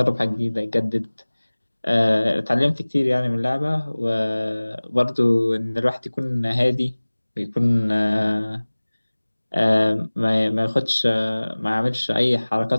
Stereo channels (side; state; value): both; inverted; correlation -1.00